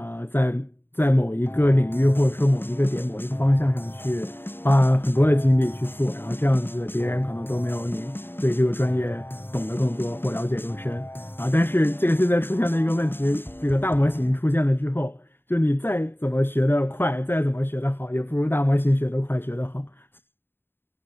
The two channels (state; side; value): late; right; 0.10 ms